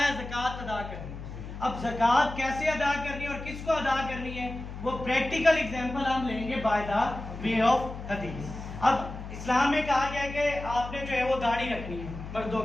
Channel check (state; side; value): noise; left; hum, 10 dB below the sound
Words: ज़कात अदा करनी। अब ज़कात कैसे अदा करनी है और किसको अदा करनी है वो प्रैक्टिकल एग्जांपल हम लेंगे बाय द वे ऑफ हदीस। अब इस्लाम में कहा गया कि आपने जो है वो दाढ़ी रखनी है मर्दों